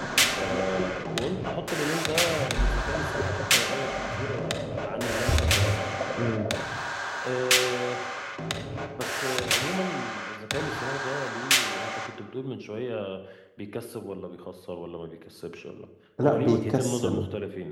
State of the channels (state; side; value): identical; both; correlation 1.00